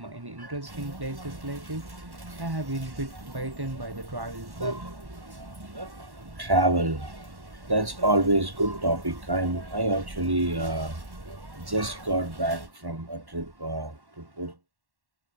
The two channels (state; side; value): late; left; 1.1 ms